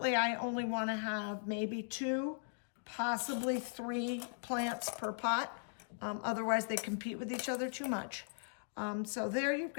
I only want to have maybe 2, possibly 3 plants per pot. Otherwise, they compete with each other too much. So there you've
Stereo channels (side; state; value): right; silent; digital silence